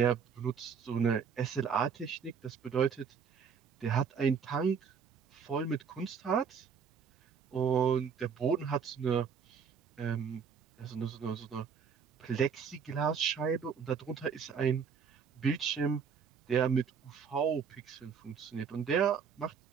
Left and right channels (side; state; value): left; quieter; 6.5 dB